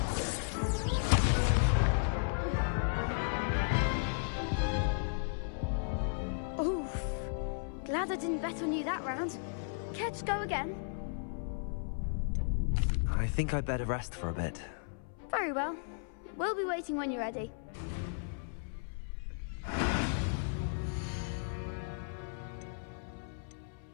Oof. Glad I didn't bet on you that round. Care to go again? I think I'd better rest for a bit. Very well. We'll be waiting when you're ready.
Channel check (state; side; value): silent; right; 54 dB below the other